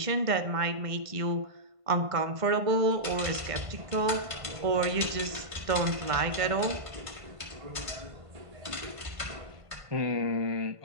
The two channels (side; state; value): left; late; 1.5 ms